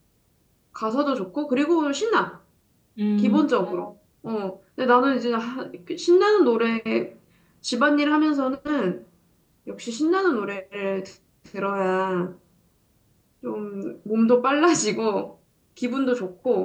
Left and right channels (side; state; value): both; identical; correlation 1.00